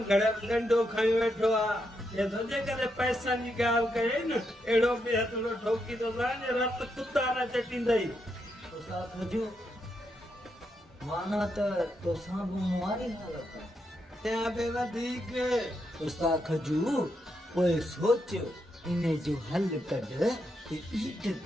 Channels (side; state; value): both; normal; correlation 0.81